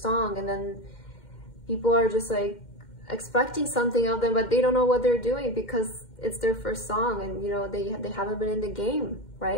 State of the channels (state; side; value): late; right; 2.1 ms